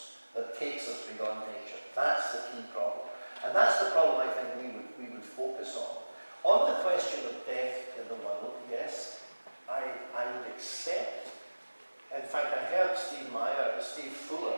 that takes us beyond nature? That's the key problem. And that's the problem I think we would focus on. On the question of death in the world, yes, I would accept. In fact, I heard Steve Fuller,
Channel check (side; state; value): both; inverted; correlation -1.00